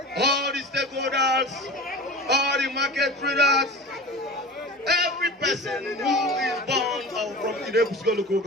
all the stakeholders, all the market traders, every person who is born from the Ekwusigo local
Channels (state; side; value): normal; both; correlation 0.33